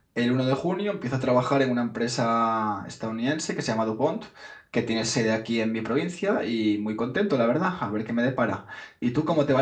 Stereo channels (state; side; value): identical; both; correlation 1.00